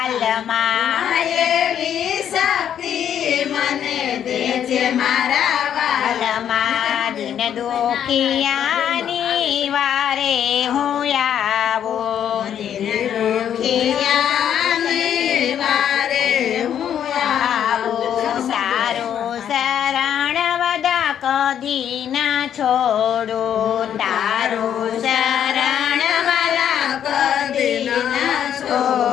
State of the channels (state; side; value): quieter; right; 9.5 dB